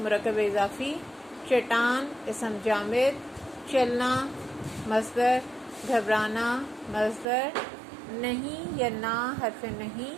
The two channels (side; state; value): left; drops out; at 7.2 s